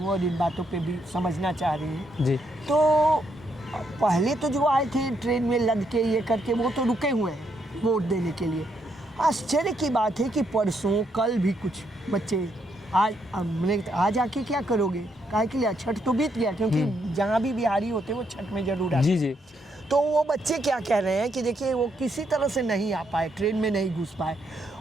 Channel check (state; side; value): normal; both; correlation 0.76